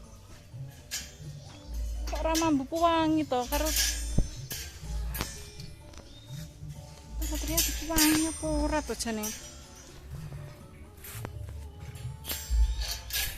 Mambu wangi to karo Satria wangi apa ora to jane.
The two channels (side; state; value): both; identical; correlation 1.00